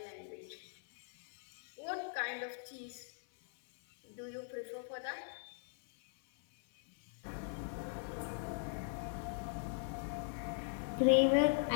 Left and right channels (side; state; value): right; silent; 51 dB below the other